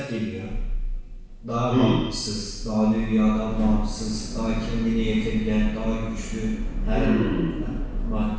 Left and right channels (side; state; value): both; identical; correlation 1.00